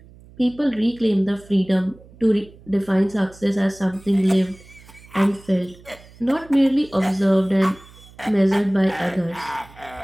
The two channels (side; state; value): right; noise; hum, 23 dB below the sound